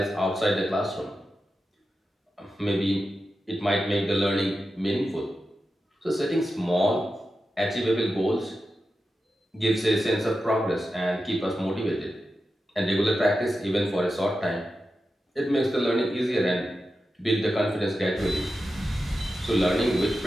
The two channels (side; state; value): both; normal; correlation 0.91